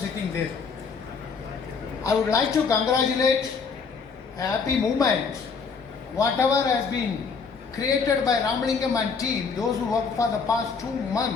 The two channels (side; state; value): right; quieter; 5.3 dB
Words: there. I would like to congratulate a happy movement. Whatever has been created by Ramalingam and team, those who worked for the past 2